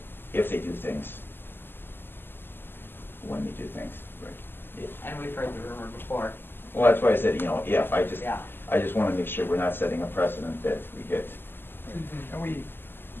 if they do things, when they do things. Right. And we've heard the rumor before. Well, that's why I said, you know, if, I just Yeah. wanna make sure we're not setting a precedent that we get. And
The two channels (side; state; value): right; late; 0.098 ms